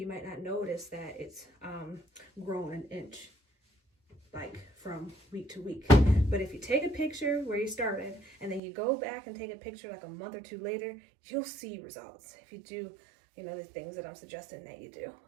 might not notice that it's grown an inch, like from week to week. But if you take a picture where you started, and then you go back and take a picture like a month or two later, you'll see results. If you do, you know, the things that I'm suggesting that you do,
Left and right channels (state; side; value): drops out; left; at 8.6 s